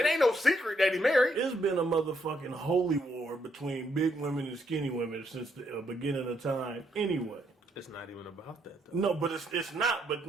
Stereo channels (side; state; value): both; normal; correlation 0.74